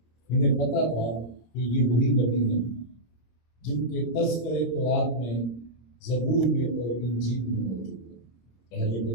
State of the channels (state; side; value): late; right; 26 ms